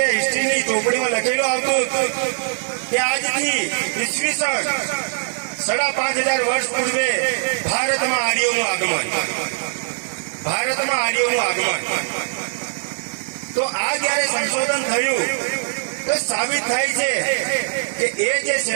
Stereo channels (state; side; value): silent; left; digital silence